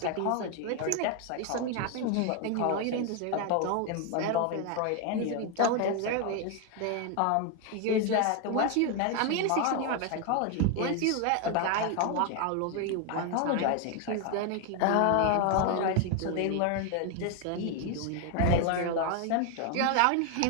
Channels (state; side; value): different; both; correlation 0.01